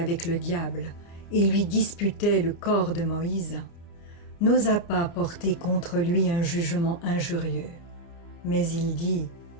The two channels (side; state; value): right; late; 29 ms